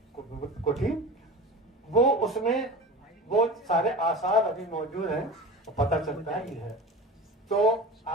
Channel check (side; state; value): both; normal; correlation 0.33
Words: कोठी, वो उसमें वो सारे आसार अभी मौजूद हैं, तो पता चलता है ये है। तो